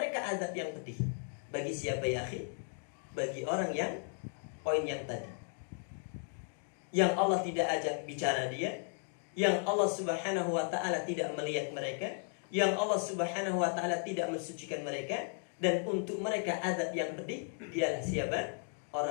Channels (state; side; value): silent; right; 54 dB below the other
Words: azab yang pedih. Bagi siapa ya akhi? Bagi orang yang poin yang tadi, yang Allah tidak ajak bicara dia, yang Allah Subhanahu wa ta'ala tidak melihat mereka, yang Allah Subhanahu wa ta'ala tidak mensucikan mereka, dan untuk mereka azab yang pedih. Dialah siapa?